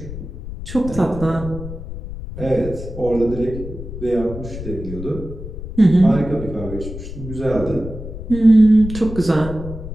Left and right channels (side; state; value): left; noise; rumble, 10 dB below the sound